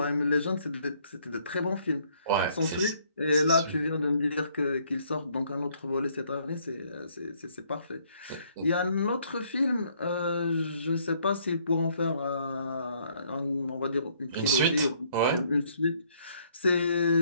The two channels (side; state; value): both; inverted; correlation -0.66